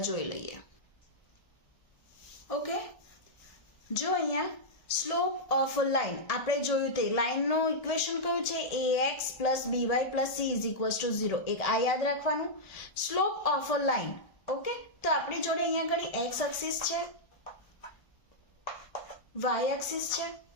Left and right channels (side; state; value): right; late; 1.7 ms